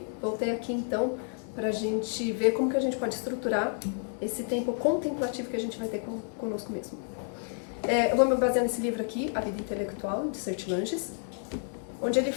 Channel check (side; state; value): right; silent; 58 dB below the other